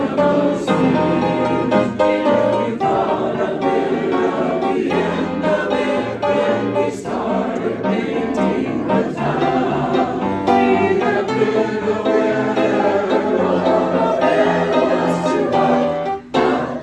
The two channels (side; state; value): both; identical; correlation 1.00